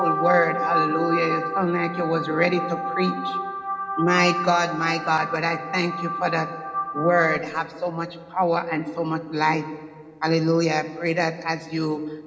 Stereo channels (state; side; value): identical; both; correlation 1.00